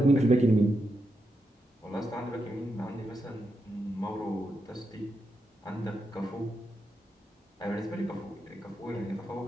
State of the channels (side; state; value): both; normal; correlation 0.85